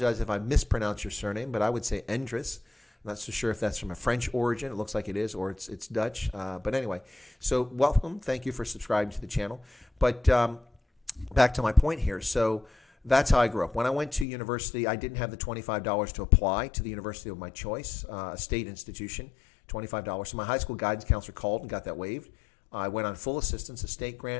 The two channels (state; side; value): drops out; right; at 14.2 s